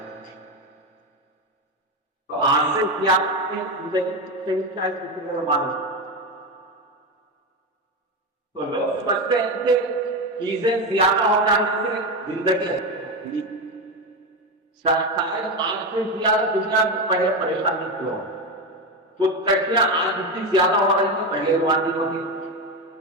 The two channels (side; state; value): both; normal; correlation 0.15